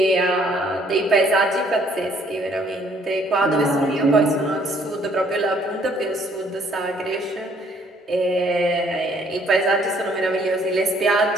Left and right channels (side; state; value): both; normal; correlation 0.63